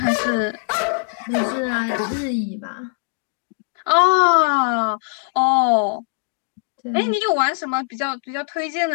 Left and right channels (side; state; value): right; silent; 65 dB below the other